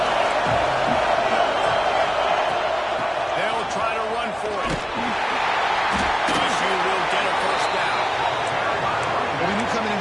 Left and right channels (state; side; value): identical; both; correlation 1.00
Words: They'll try to run for it. LSU will get a first down. Well, we knew coming